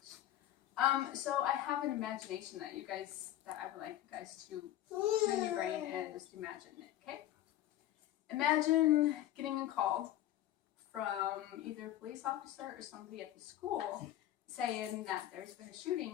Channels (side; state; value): right; quieter; 13.2 dB